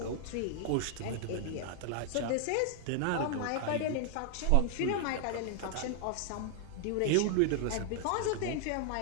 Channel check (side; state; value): both; different; correlation 0.00